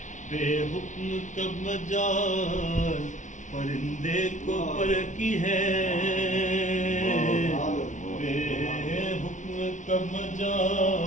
बेहुक्म कब मजाल परिंदे को पर की है, बेहुक्म कब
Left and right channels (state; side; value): late; right; 0.36 ms